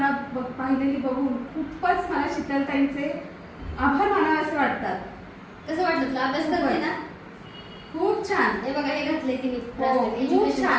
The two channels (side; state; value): both; identical; correlation 1.00